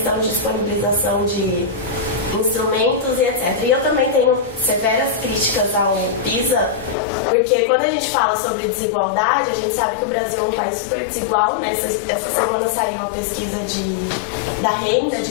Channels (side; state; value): right; drops out; at 7.0 s